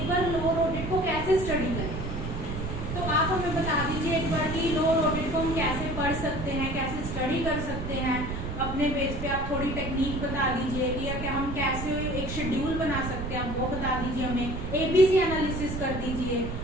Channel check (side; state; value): right; noise; rumble, 5 dB below the sound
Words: बार लोअर ऑडिट को कैसे स्टडी करें। तो आप हमें बता दीजिए एक बार कि लोअर ऑडिट को हम कैसे पढ़ सकते हैं, कैसे स्टडी कर सकते हैं अपने बेस पे। आप थोड़ी टेक्निक बता दीजिए कि या क्या हम कैसे एक शेड्यूल बना सकते हैं, आप वो बता दीजिए हमें, ABC एनालिसिस कर दीजिए।